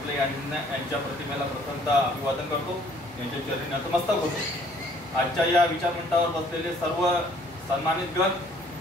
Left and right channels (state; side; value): normal; both; correlation 0.59